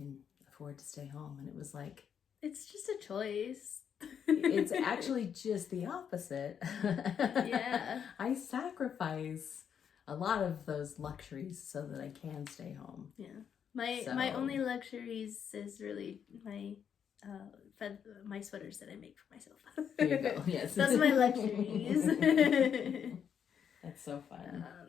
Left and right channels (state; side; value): quieter; right; 7.9 dB